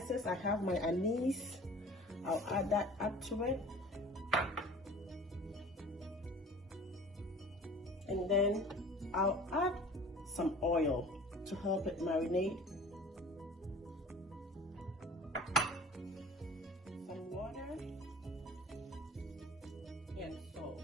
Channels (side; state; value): both; normal; correlation 0.44